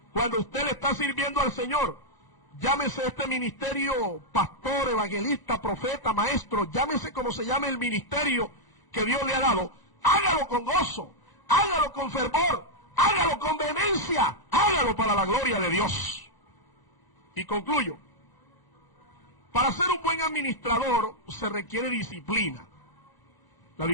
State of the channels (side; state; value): right; late; 1.0 ms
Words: cuando usted le está sirviendo al Señor, llámese este ministerio pastor, evangelista, profeta, maestro, llámese como se llame el ministerio que Dios le ha dado, hágalo con gozo, hágalo con fervor, hágalo con vehemencia, hágalo para la gloria de Dios. Y concluyo, para ser un buen administrador se requiere disciplina. La